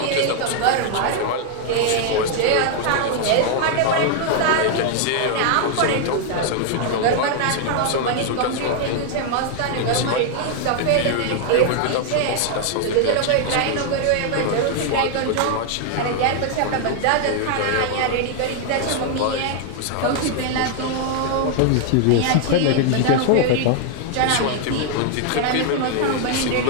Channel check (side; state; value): both; different; correlation 0.00